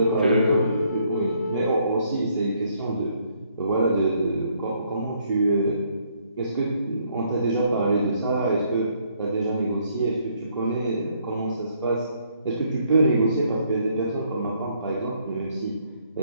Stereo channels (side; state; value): both; inverted; correlation -0.69